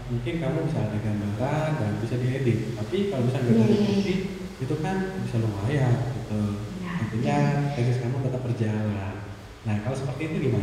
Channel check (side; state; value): both; identical; correlation 1.00